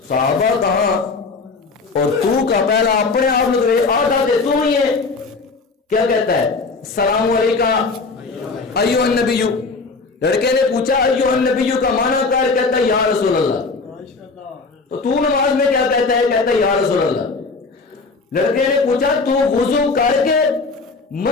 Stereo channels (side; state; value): right; quieter; 4.1 dB